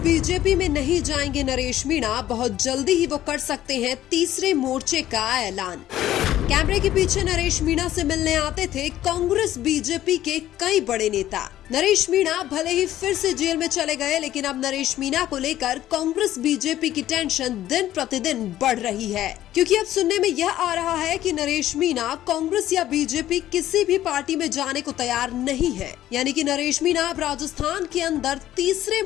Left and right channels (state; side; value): quieter; right; 13.2 dB